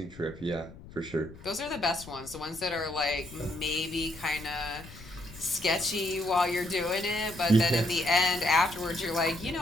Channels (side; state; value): left; noise; rumble, 18 dB below the sound